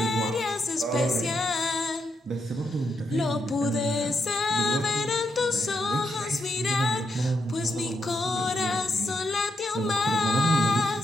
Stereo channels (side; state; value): both; normal; correlation 0.81